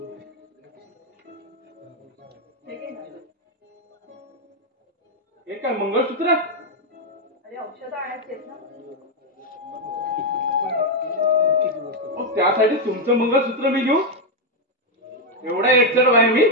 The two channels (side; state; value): both; normal; correlation 0.03